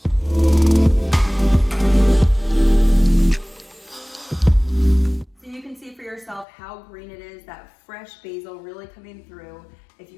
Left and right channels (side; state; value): right; drops out; at 6.5 s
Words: So you can see for yourself how green it is, that fresh basil really coming through. If